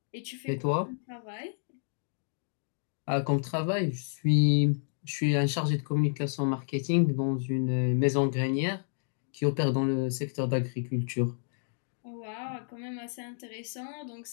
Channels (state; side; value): silent; right; digital silence